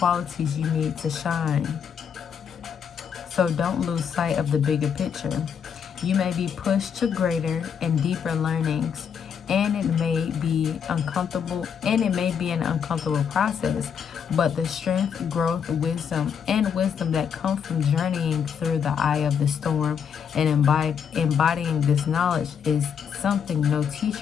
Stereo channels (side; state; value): right; quieter; 7.4 dB